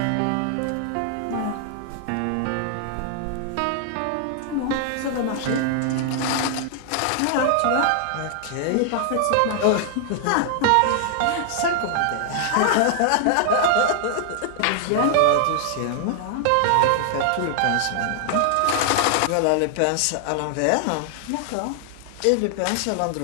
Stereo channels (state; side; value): different; both; correlation 0.00